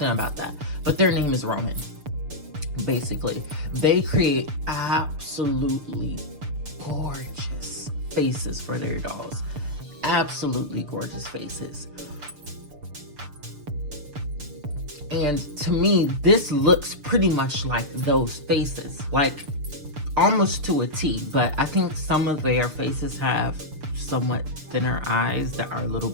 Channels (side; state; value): left; late; 6.7 ms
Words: about that. But their name is Roman. Basically, they create absolutely gorgeous faces for their dolls. Absolutely gorgeous faces. And to me, this looks pretty much like those faces, like almost to a T, but I think some of their faces have somewhat thinner eyes that are a little